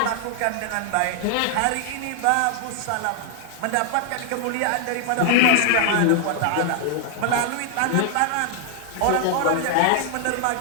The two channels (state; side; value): different; both; correlation 0.00